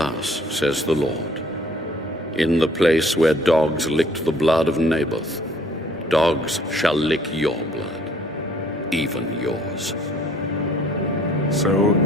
says the Lord, in the place where dogs licked the blood of Naboth, dogs shall lick your blood, even yours. So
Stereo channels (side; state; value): both; normal; correlation 0.58